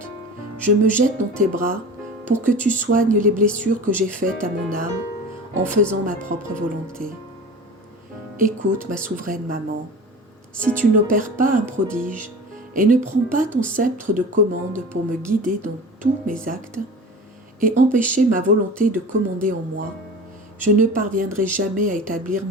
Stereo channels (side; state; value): both; normal; correlation 0.35